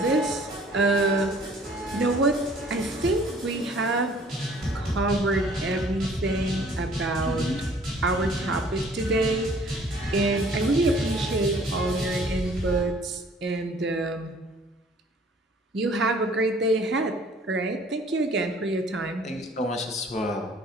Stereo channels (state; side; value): normal; both; correlation 0.55